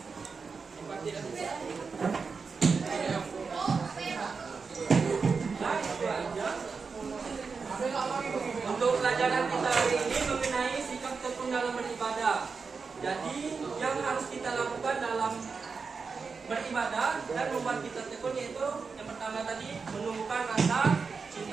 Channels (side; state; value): left; quieter; 5.0 dB